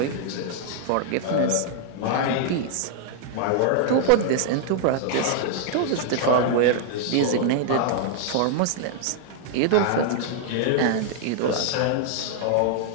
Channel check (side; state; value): both; different; correlation 0.00